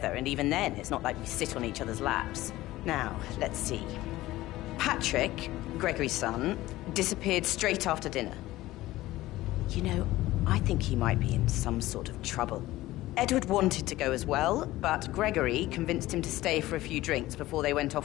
and even then, it's not like we sit on each other's laps. Now, let's see. Patrick, Gregory's son, disappeared straight after dinner. You know, I think he might be in some sort of trouble. Edward wanted to go as well, but Gregory convinced him to stay for a few drinks before they went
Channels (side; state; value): right; quieter; 16.9 dB